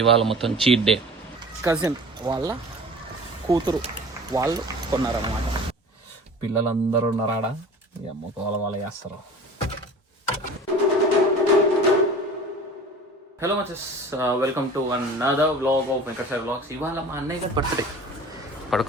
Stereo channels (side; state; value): both; normal; correlation 0.41